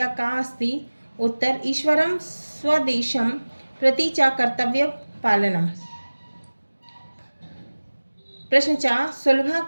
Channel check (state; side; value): inverted; both; correlation -1.00